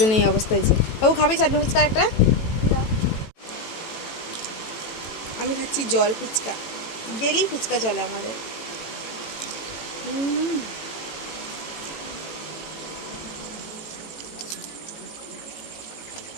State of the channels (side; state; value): right; late; 18 ms